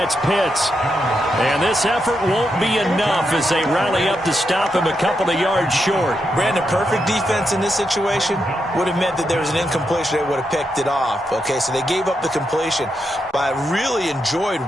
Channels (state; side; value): normal; both; correlation 0.83